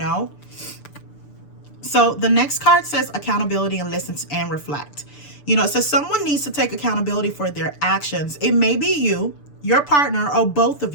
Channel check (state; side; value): late; right; 6.9 ms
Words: So the next card says accountability and listen and reflect. You know, it says someone needs to take accountability for their actions. It may be you, your partner, or both of